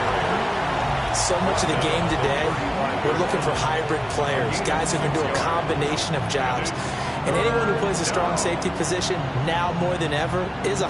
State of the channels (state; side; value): identical; both; correlation 1.00